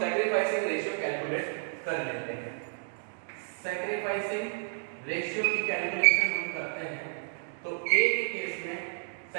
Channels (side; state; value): left; silent; digital silence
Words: सैक्रिफाइसिंग रेशियो कैलकुलेट कर लेते हैं. सैक्रिफाइसिंग रेशियो की कैलकुलेशन हम करते हैं तो ए के केस में